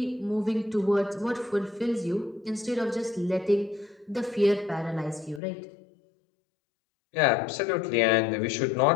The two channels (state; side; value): drops out; right; at 5.4 s